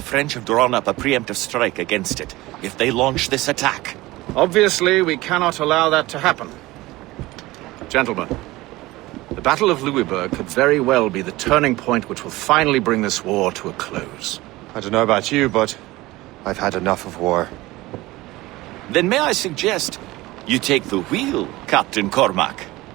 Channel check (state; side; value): quieter; left; 19.2 dB